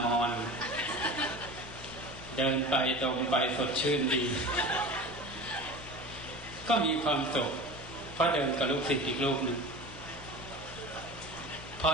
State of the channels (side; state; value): left; noise; hum, 15 dB below the sound